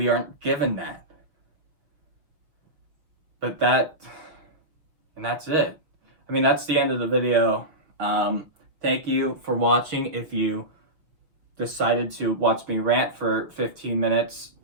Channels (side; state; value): left; late; 6.2 ms